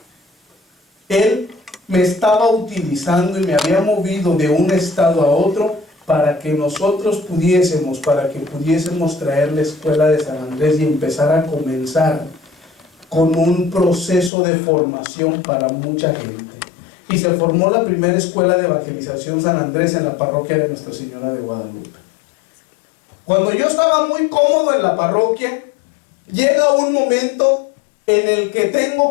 Él me estaba utilizando y me había movido de un estado a otro para que nosotros pudiésemos traer la escuela de San Andrés y empezar a comenzar con un proceso de formación para mucha gente. Y se formó la primera escuela de evangelización San Andrés en la parroquia de Nuestra Señora de Guadalupe. Cuando yo estaba muy cómodo en la parroquia, llega un momento en el que tengo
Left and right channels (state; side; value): drops out; right; at 14.3 s